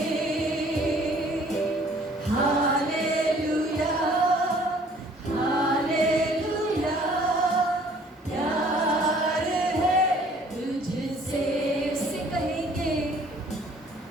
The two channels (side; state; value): both; normal; correlation 0.56